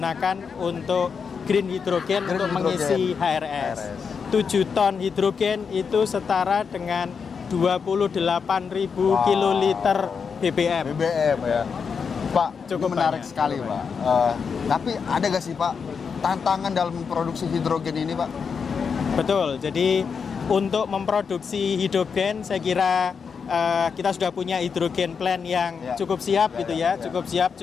untuk green hidrogen untuk mengisi HRS. 7 ton hidrogen itu setara dengan 28.000 kiloliter BBM. BBM ya. Pak, Cukup ini menarik banyak, sekali, cukup Pak. Tapi ada nggak sih, Pak, tantangan dalam memproduksi hidrogen ini, Pak? Betul, jadi untuk memproduksi hidrogen saya kira kita sudah punya hidrogen plant yang cukup siap gitu ya, cukup siap,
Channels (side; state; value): right; quieter; 6.0 dB